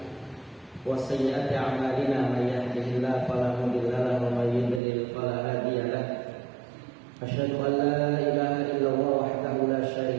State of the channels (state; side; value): drops out; left; at 4.8 s